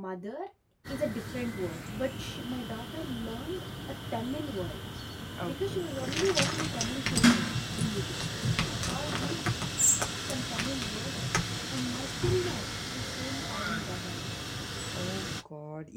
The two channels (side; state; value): both; identical; correlation 1.00